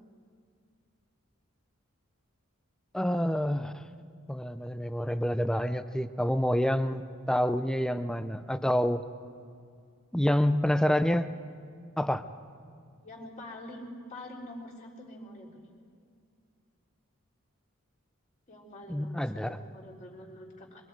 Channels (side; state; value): both; normal; correlation 0.95